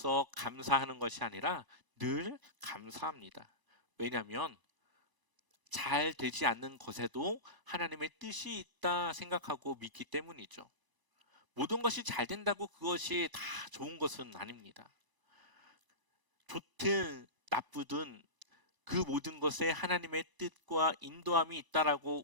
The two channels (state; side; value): late; left; 1.0 ms